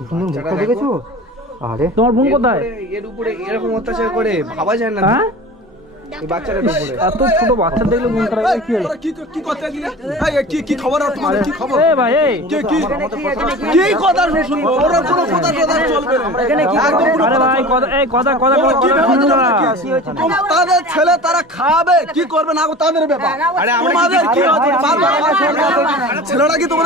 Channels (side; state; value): both; normal; correlation 0.36